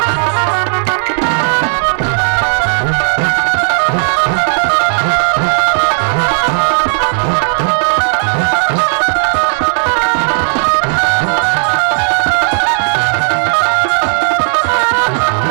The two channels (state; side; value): silent; left; digital silence